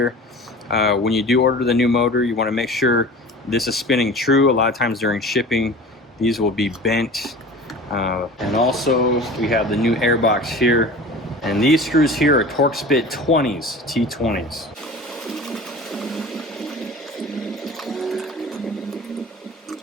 When you do order the new motor, you wanna make sure this is spinning true. A lot of times during shipping, these will be bent. And also we have the new air box here, and these screws here are Torx bit 20s, T20s.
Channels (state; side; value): normal; both; correlation 0.38